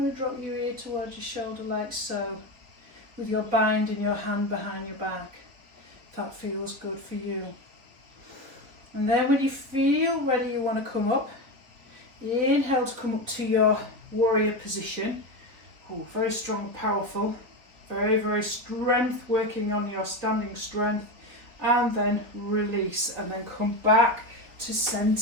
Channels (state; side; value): late; left; 4.2 ms